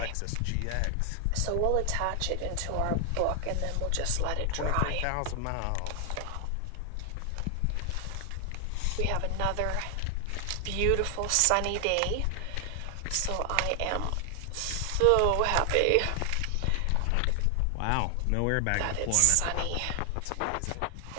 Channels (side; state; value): both; different; correlation 0.00